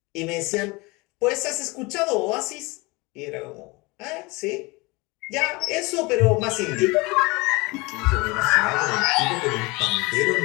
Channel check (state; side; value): quieter; right; 24.8 dB